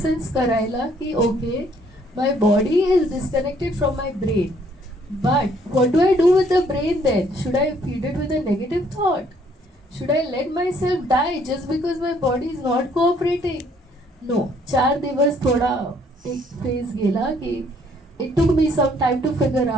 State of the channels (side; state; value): both; normal; correlation 0.64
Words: करायला की okay my body is disconnected from my brain, but what do I do with the brain then? Should I feed it with a negative thought? Should I let myself die just because my body is not cooperating? No. 4 दिवस थोडा एक phase गेला की it took me some time to figure